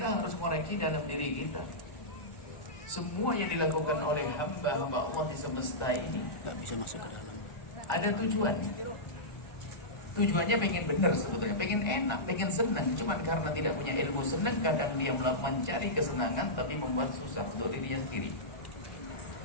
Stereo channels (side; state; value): right; late; 1.3 ms